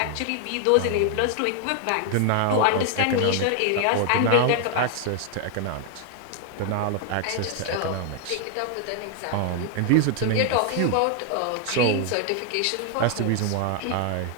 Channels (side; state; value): both; different; correlation 0.00